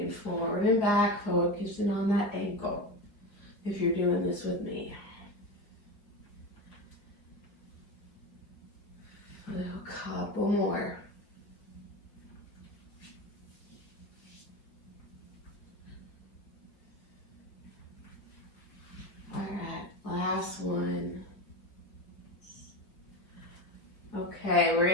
forward and back, focusing on that ankle. If you're doing this with me. A couple more. All right, last one. Okay, we're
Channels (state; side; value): late; right; 4.7 ms